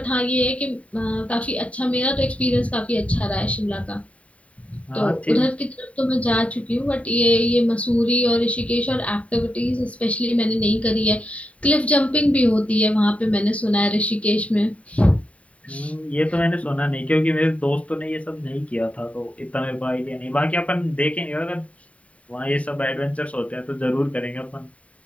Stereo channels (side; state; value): right; late; 0.066 ms